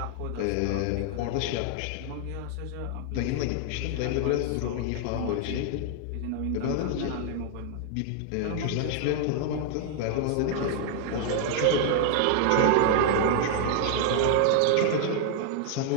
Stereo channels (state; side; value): different; both; correlation 0.00